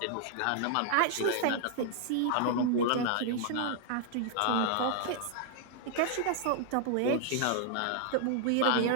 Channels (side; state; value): both; different; correlation -0.01